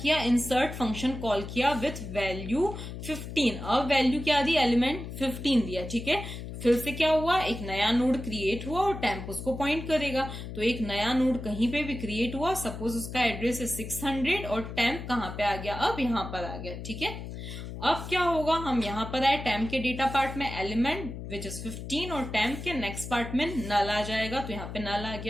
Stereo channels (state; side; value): noise; left; hum, 9 dB below the sound